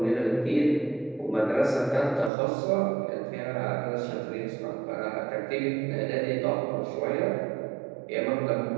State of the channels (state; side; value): drops out; left; at 2.3 s